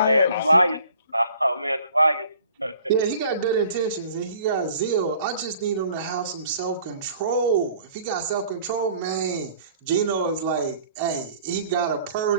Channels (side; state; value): both; inverted; correlation -0.52